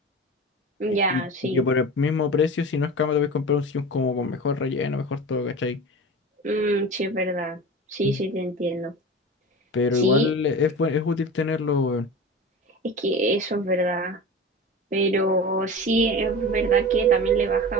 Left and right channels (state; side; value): normal; both; correlation 0.32